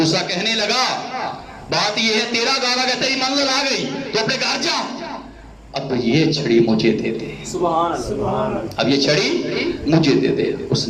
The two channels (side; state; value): both; identical; correlation 1.00